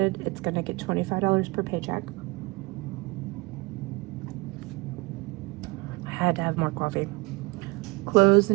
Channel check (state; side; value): quieter; left; 25.6 dB